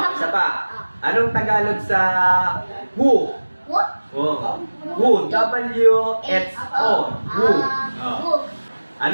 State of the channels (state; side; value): inverted; both; correlation -1.00